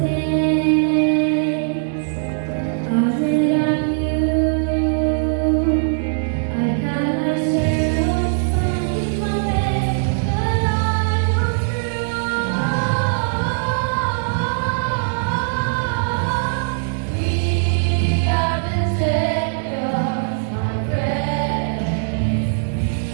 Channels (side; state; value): left; silent; digital silence